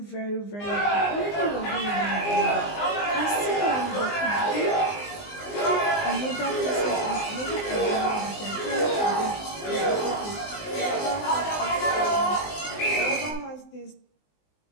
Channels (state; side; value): late; right; 19 ms